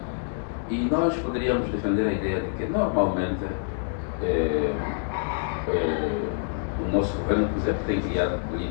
E nós poderíamos defender a ideia de que, normalmente, o nosso governo, por exemplo, tem criado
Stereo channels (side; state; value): right; silent; digital silence